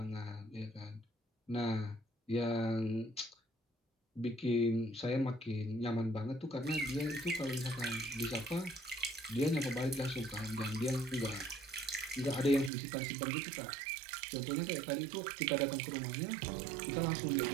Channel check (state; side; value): drops out; left; at 12.7 s